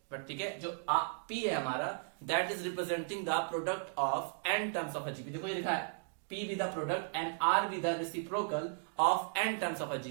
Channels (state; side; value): silent; left; digital silence